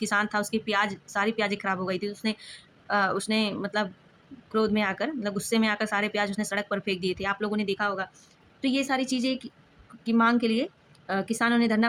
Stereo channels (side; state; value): both; identical; correlation 1.00